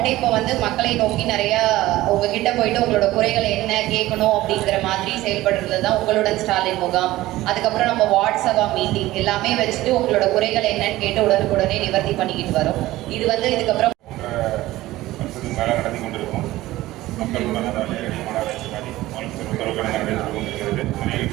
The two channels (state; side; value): quieter; left; 16.8 dB